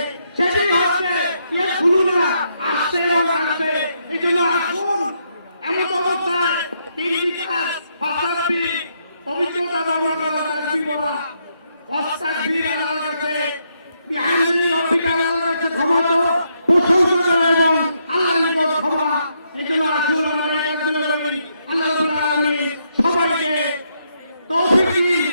সেটি হচ্ছে ইয়ে খুলুন না আসছে এবং আসছে এই জন্য আসুন এমন অবস্থায় তিন বিকাশ ফাসাদবি পবিত্রতা বর্ণনা করা তাকবীর বলা অস্তাকবীর আল্লাহর কাছে বিহামদি রব্বিকা আল্লাহর কাছে ক্ষমা তো প্রশংসা করা এবং আল্লাহর নিকট ক্ষমা এই জন্য আসুন আমরা এই কাজগুলো করি আল্লাহ রাব্বুল আলামিন সবাইকে তৌফিক দিন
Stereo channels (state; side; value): inverted; both; correlation -0.77